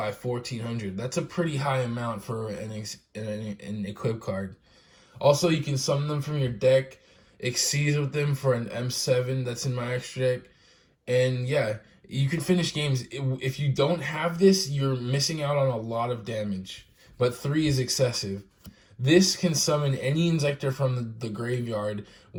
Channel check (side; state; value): both; identical; correlation 1.00